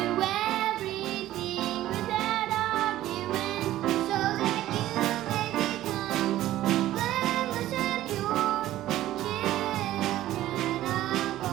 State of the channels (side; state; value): left; quieter; 14.3 dB